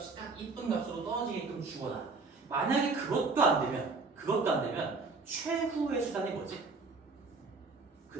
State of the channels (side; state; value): left; quieter; 4.0 dB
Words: 딱 이쁜 값으로 떨어지게끔 주거나 만약에 그것도 안 되면 최후의 수단이 뭐지?